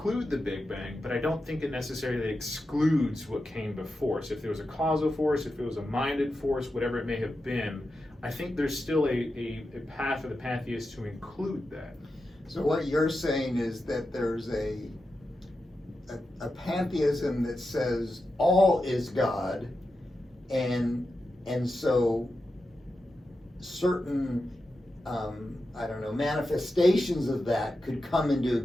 the Big Bang, but I don't think it necessarily excludes what came before. So if there was a causal force, if it was a minded force, whatever it may have been, I think there's still a path for the pantheists to include that. So what you're saying is that there's a pantheism that says all is God, and so certain manifestations of that could come into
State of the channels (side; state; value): both; normal; correlation 0.90